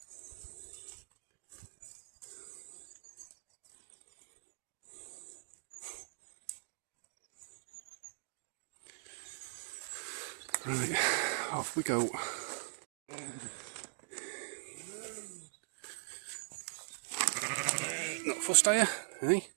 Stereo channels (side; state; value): left; silent; digital silence